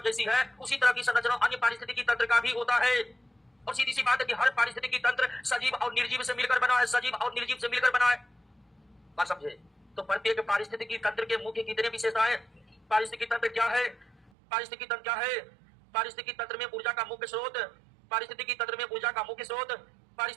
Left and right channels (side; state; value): left; drops out; at 14.3 s